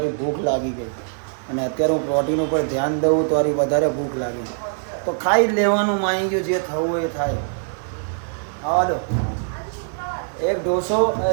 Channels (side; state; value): left; silent; digital silence